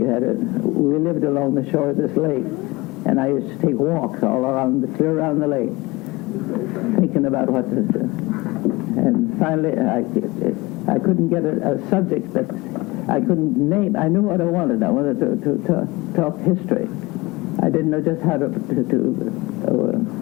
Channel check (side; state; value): right; quieter; 22.4 dB